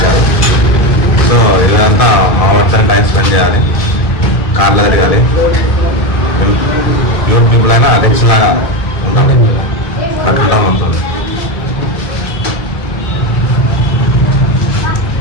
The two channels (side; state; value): right; late; 1.7 ms